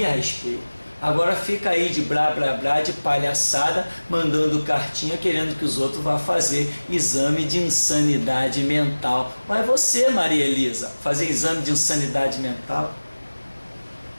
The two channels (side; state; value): both; inverted; correlation -1.00